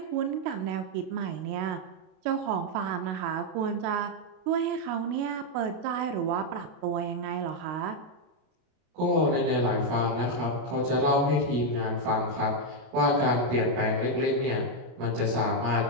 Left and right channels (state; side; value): late; left; 32 ms